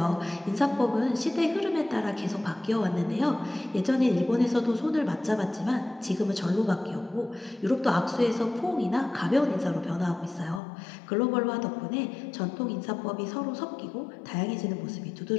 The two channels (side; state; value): right; drops out; at 10.6 s